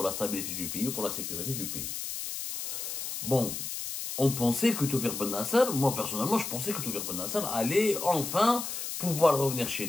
la stabilité du pays ou pour la sécurité du pays. Bon, on pensait que Toufir Ben Nasser, moi personnellement je pensais que Toufir Ben Nasser allait enfin pouvoir revenir chez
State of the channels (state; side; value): noise; left; hiss, 5 dB below the sound